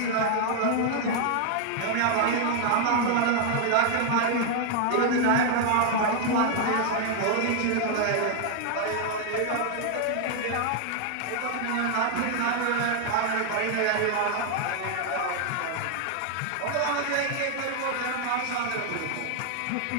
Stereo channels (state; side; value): different; both; correlation 0.00